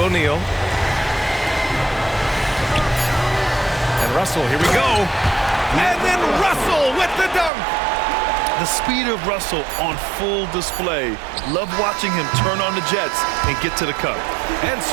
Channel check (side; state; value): left; drops out; at 7.5 s